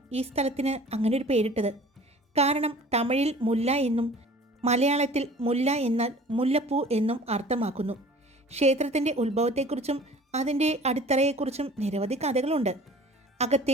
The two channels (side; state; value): both; normal; correlation 0.46